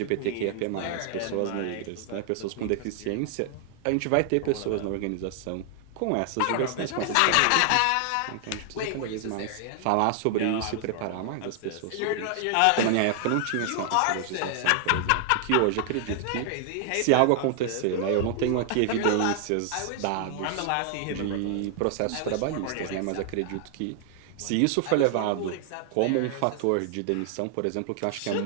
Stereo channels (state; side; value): different; both; correlation 0.00